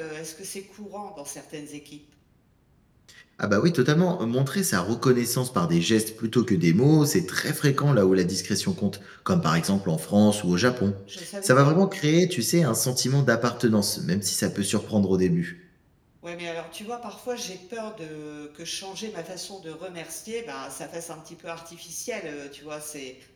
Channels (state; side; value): identical; both; correlation 1.00